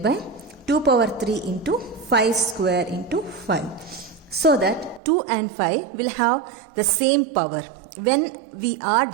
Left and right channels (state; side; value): drops out; left; at 5.0 s